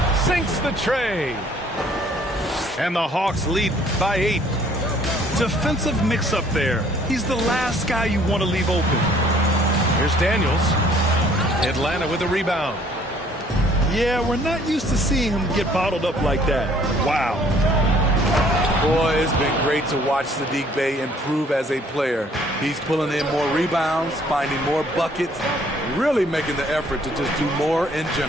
Sinks the tray. And the Hawks lead by 8. Defensive mix-up there. He's the last guy you want to leave open. Here's Daniels. Atlanta with a rebound. Yeah, we're not used to seeing him get bottled up like that. Wow. Boy, it's been great to watch Saddiq Bey improve as a player. He's pulling in more rebounds, finding more buckets, really making the effort to just do more in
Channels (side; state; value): both; normal; correlation 0.59